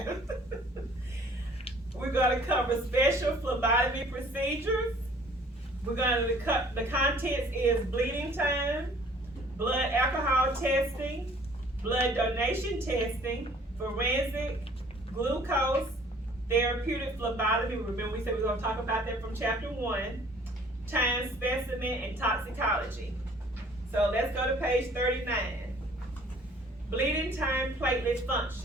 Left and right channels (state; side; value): normal; both; correlation 0.54